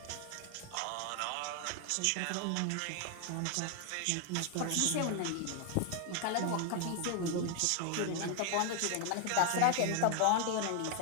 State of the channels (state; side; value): different; both; correlation 0.00